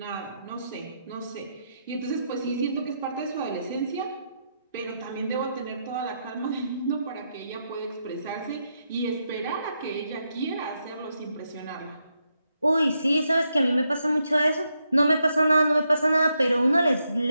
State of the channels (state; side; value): inverted; both; correlation -0.82